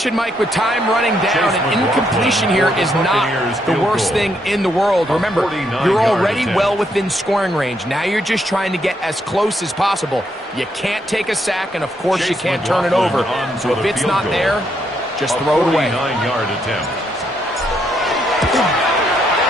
Mike, with time running down, an incompletion here is not the worst thing in the world. Remember, you're already well within scoring range. Now you're just trying to get as close as possible. You can't take a sack, and of course you can't turn it over. So if it's not there, just throw it away. 49-yard attempt.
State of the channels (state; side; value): normal; both; correlation 0.76